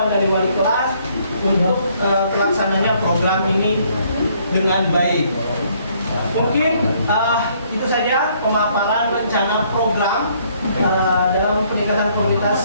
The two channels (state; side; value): inverted; both; correlation -0.66